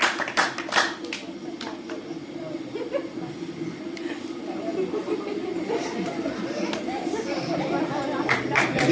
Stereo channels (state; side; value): identical; both; correlation 1.00